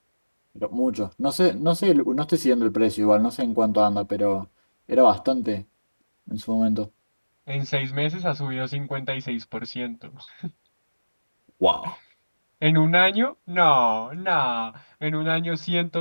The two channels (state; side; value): inverted; both; correlation -1.00